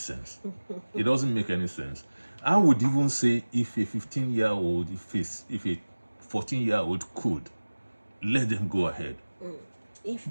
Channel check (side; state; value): both; inverted; correlation -1.00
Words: It doesn't make any sense. I would even say if a 15-year-old, if a 14-year-old could, let them go ahead. If